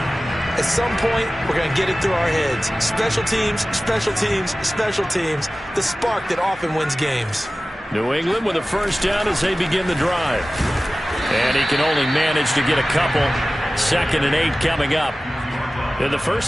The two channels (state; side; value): normal; both; correlation 0.96